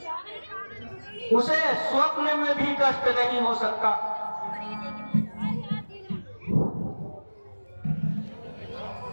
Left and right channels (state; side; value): inverted; both; correlation -1.00